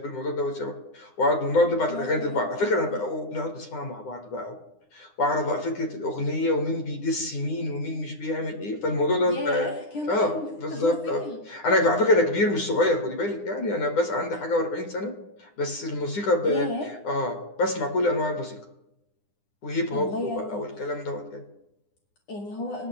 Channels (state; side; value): late; right; 9.9 ms